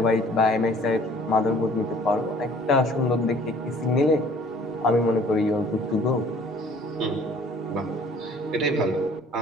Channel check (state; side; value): normal; both; correlation 0.54